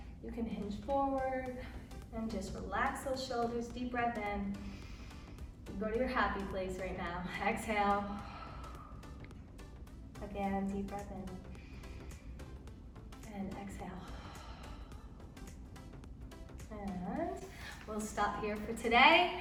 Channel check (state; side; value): identical; both; correlation 1.00